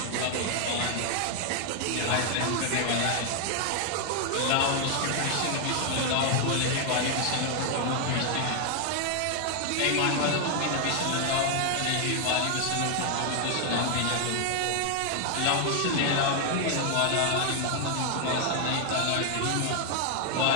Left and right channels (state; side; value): different; both; correlation 0.00